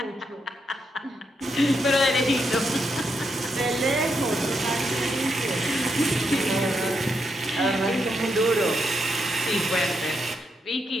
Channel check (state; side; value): normal; both; correlation 0.81